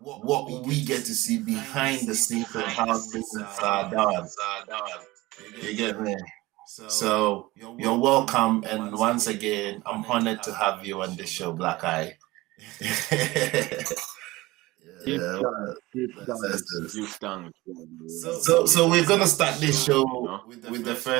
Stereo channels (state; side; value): quieter; left; 19.9 dB